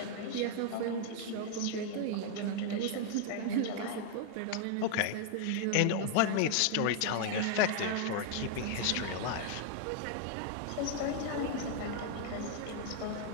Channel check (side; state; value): both; different; correlation 0.00